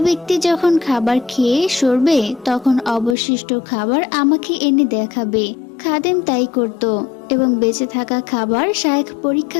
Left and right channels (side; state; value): right; drops out; at 3.2 s